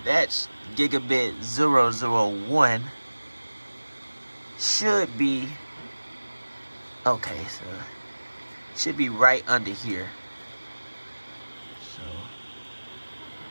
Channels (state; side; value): inverted; both; correlation -1.00